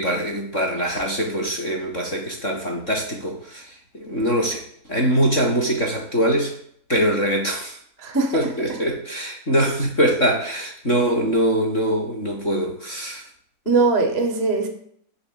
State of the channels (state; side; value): late; right; 3.6 ms